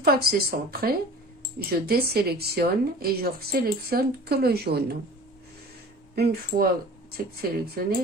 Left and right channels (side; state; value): both; normal; correlation 0.42